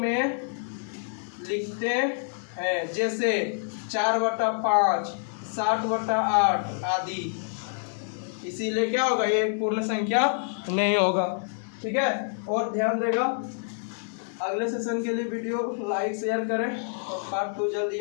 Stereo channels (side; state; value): right; silent; digital silence